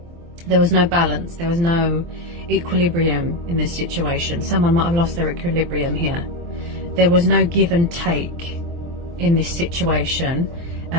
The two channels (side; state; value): left; late; 23 ms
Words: There was no balance, there was no equilibrium in this situation. Someone might have lost their equilibrium here. There was no give and take in this situation,